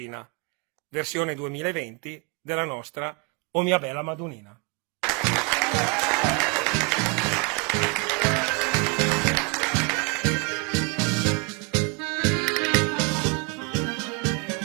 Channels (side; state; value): left; quieter; 31.7 dB